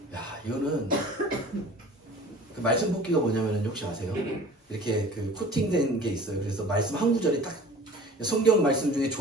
이거는 그 말씀 뽑기가 뭐냐면은 혹시 아세요? 이렇게 그 코팅된 게 있어요. 그래서 말씀 한 구절이 딱 성경 말씀 중에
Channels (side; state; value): both; normal; correlation 0.44